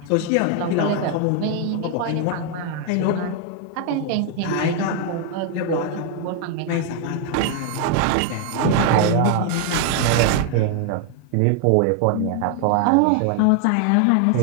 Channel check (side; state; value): both; different; correlation 0.00